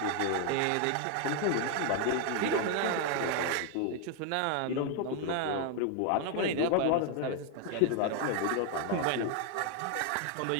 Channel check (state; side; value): different; both; correlation 0.00